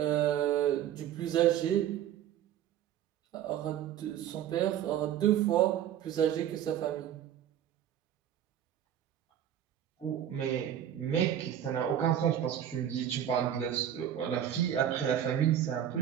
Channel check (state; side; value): quieter; left; 10.5 dB